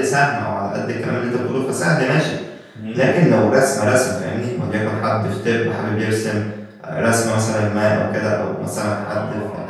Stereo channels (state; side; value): identical; both; correlation 1.00